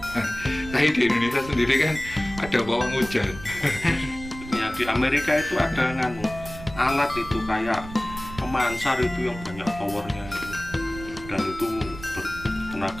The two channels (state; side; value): noise; right; rumble, 14 dB below the sound